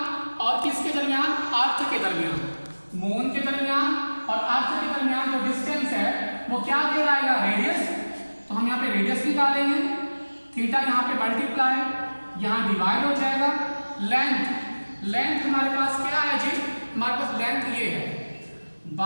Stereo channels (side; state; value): both; inverted; correlation -1.00